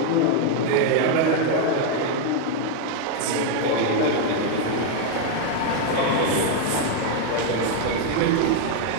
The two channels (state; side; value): different; both; correlation 0.00